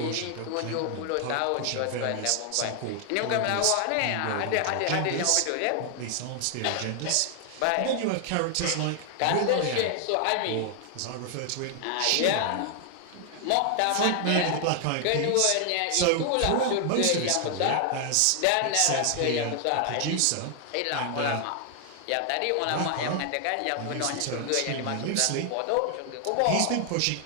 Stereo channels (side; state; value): both; different; correlation 0.00